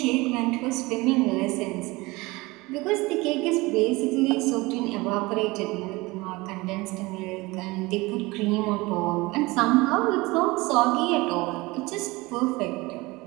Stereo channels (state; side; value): quieter; left; 22.3 dB